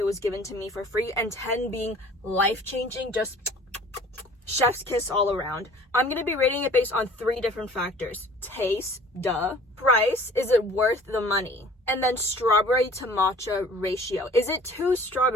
was given to me for free, and 10 being life-changing, just chef's kiss all around. I'm going to be rating it based on 3 different factors. Taste, duh. Price, is it worth the money? And then strawberry to matcha ratio. Is it too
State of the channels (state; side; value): normal; both; correlation 0.49